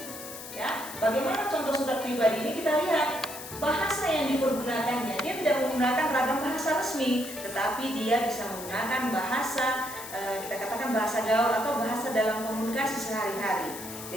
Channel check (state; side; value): noise; left; hiss, 11 dB below the sound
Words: ya. Bagaimana contoh surat pribadi ini? Kita lihat bahasa yang dipergunakannya. Dia tidak menggunakan ragam bahasa resmi, tetapi dia bisa menggunakan bahasa kita katakan bahasa gaul atau bahasa dalam komunikasi sehari-hari.